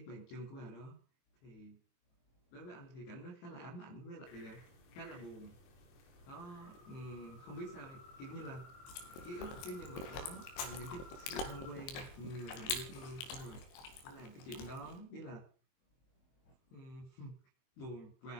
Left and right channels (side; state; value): right; late; 23 ms